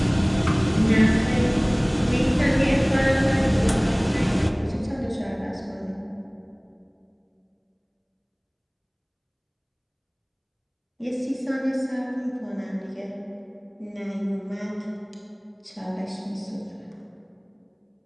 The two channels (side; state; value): both; identical; correlation 1.00